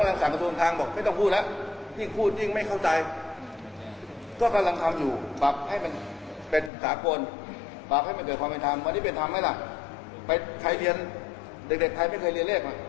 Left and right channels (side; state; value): right; drops out; at 6.7 s